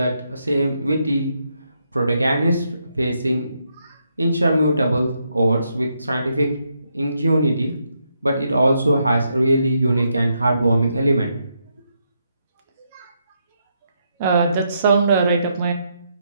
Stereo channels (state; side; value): inverted; both; correlation -0.79